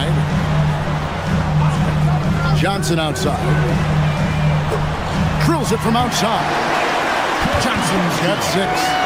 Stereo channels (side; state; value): both; identical; correlation 1.00